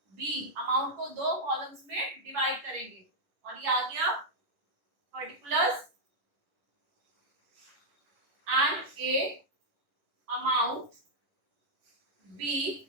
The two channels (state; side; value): late; left; 10 ms